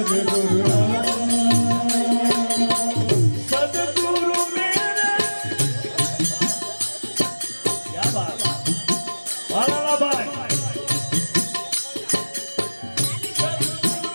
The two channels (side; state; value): both; inverted; correlation -1.00